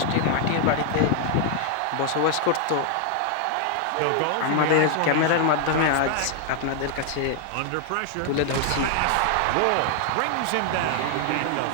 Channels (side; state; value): both; different; correlation 0.00